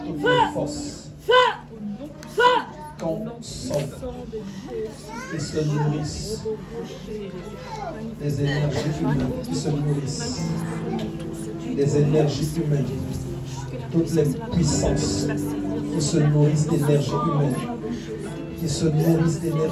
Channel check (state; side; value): identical; both; correlation 1.00